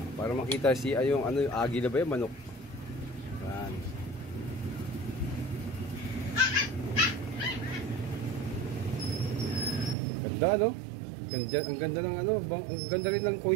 para makita si yung agila ba yung manok. Ayan. Ganda no? Ganda, ang ganda ng ang ganda rin ng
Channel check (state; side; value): drops out; left; at 10.0 s